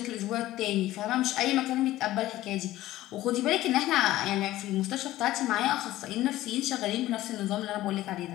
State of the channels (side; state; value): right; quieter; 15.6 dB